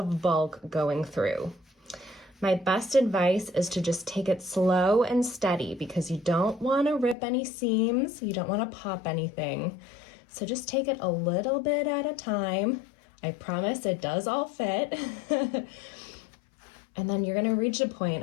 bulk going through. My best advice is to just take it slow and steady because you don't want to rip any seams, you don't want to pop anything. So just take it a little bit at a time. I promise it does all fit. And then you're gonna reach a point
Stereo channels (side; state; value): right; drops out; at 7.2 s